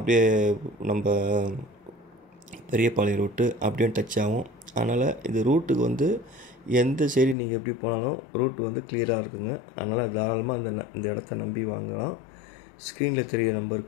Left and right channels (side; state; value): right; drops out; at 7.4 s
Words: நம்ம பெரியபாளையம் ரூட்டு அப்படியே டச் ஆகும். அதனால் இந்த ரூட்டுக்கு எந்த சைடு நீங்கள் எப்படி போனாலும் ரூட்டு கிளியராக இருக்குங்க. அதனால் தாராளமாக இந்த இடத்த நம்பி வாங்கலாம். ஸ்க்ரீனில் தெரிகிற